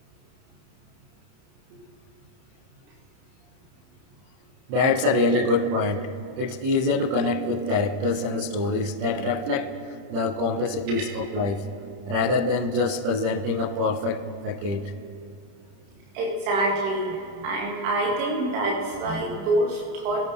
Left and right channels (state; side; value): late; left; 31 ms